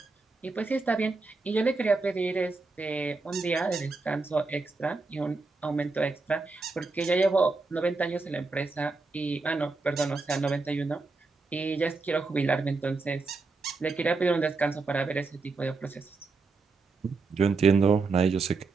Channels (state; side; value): quieter; left; 3.9 dB